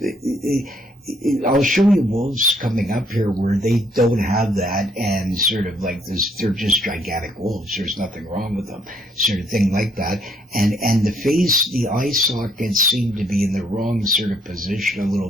I'll show you wolves coming up here where they don't have that, and sort of like this, they're just gigantic wolves. There's nothing wrong with them, sort of thing like that. And the face, the eye sockets seem to be in the wrong sort of position a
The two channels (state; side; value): normal; both; correlation 0.68